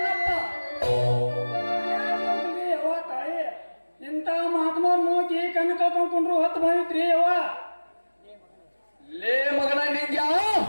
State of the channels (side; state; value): both; inverted; correlation -1.00